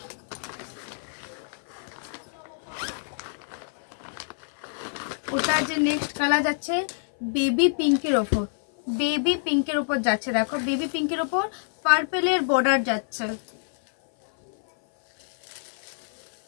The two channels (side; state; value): right; silent; 56 dB below the other